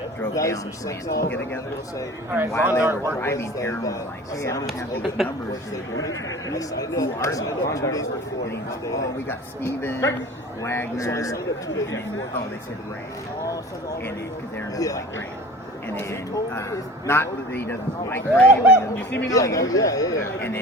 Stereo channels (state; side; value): normal; both; correlation 0.40